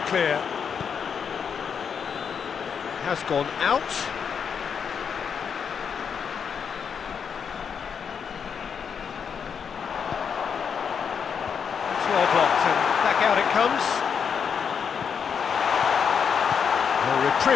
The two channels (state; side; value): quieter; right; 6.9 dB